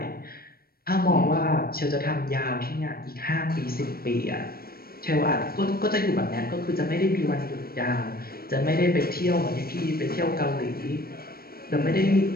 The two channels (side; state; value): right; late; 0.44 ms